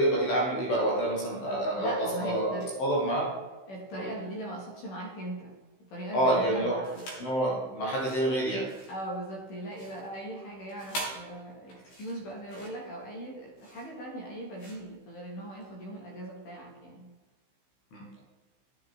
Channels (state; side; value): late; right; 16 ms